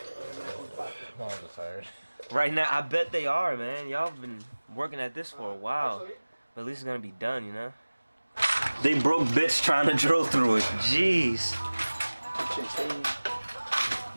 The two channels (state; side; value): inverted; both; correlation -1.00